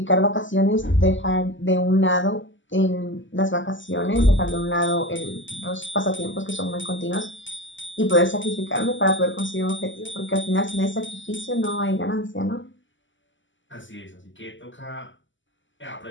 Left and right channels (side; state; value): right; late; 0.55 ms